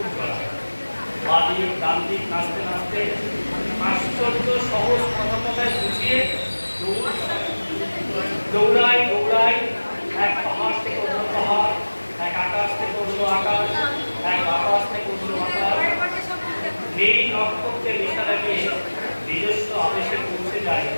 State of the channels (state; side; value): inverted; both; correlation -1.00